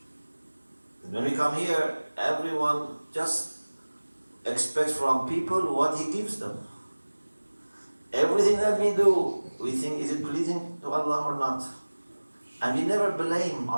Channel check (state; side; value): inverted; both; correlation -1.00